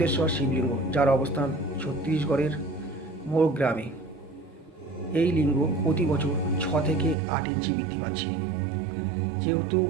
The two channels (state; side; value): drops out; left; at 7.2 s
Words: শিবলিঙ্গ, যার অবস্থান ছত্তিশগড়ের মোর গ্রামে। এই লিঙ্গ প্রতি বছর 6 থেকে 8 ইঞ্চি বৃদ্ধি পাচ্ছে। যেহেতু